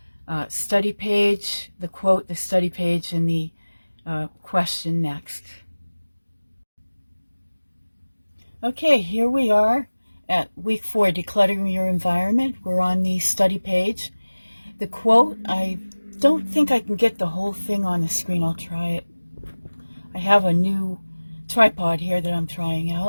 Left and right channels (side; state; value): both; inverted; correlation -1.00